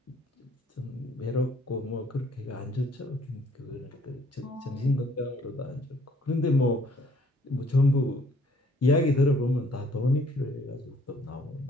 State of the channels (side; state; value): both; normal; correlation 0.61